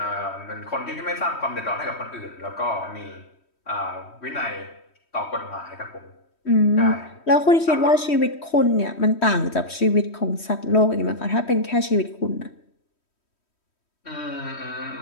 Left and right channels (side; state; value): right; late; 3.1 ms